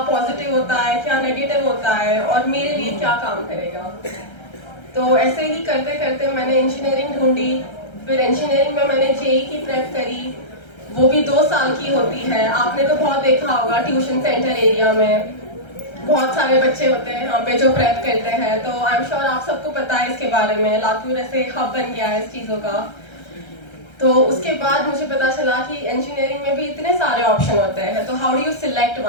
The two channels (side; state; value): right; late; 1.3 ms